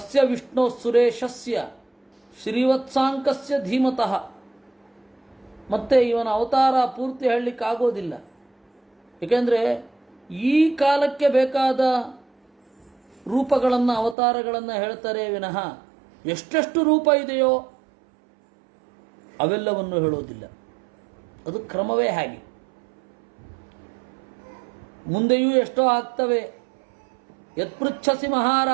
ವಿಷ್ಣು ಸುರೇಶಸ್ಯ ಶ್ರೀವತ್ಸಾಂಕಸ್ಯ ಧೀಮತಃ. ಮತ್ತೆ ಇವನ ಅವತಾರ ಪೂರ್ತಿ ಹೇಳಲಿಕ್ಕಾಗೋದಿಲ್ಲ, ಏಕೆಂದರೆ ಈ ಕಾಲಕ್ಕೆ ಬೇಕಾದ ರೂಪಗಳನ್ನು, ಅವತಾರಗಳನ್ನು ಹೇಳ್ತಾರೆ ವಿನಃ ಎಷ್ಟೆಷ್ಟು ರೂಪ ಇದೆಯೋ ಅವೆಲ್ಲವನ್ನು ಹೇಳೋದಿಲ್ಲ. ಅದು ಕ್ರಮವೇ ಹಾಗೆ. ಮುಂದೆಯೂ ಎಷ್ಟೋ ಆಗ್ತವೆ. ಯತ್ಪೃಚ್ಛಸಿ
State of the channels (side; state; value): left; drops out; at 14.2 s